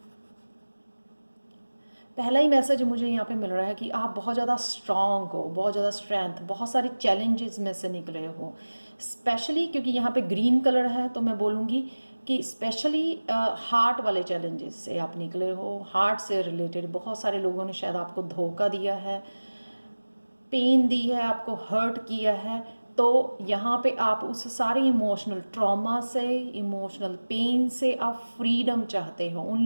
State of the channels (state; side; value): inverted; both; correlation -1.00